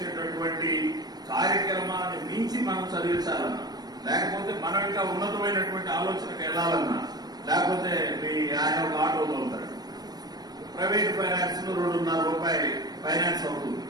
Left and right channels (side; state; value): left; late; 0.19 ms